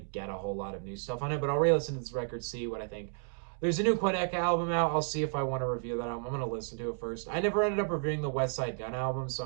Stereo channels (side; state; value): left; silent; 56 dB below the other